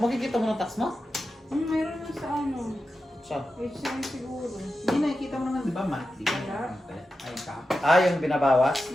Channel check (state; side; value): normal; both; correlation 0.91